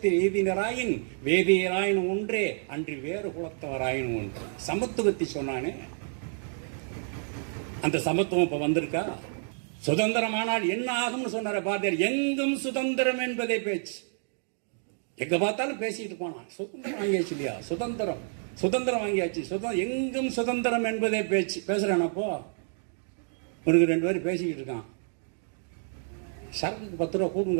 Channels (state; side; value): silent; left; 59 dB below the other